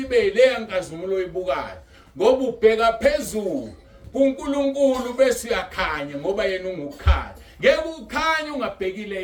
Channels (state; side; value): identical; both; correlation 1.00